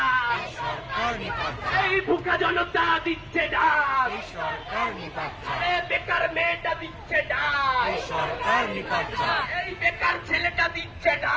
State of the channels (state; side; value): identical; both; correlation 1.00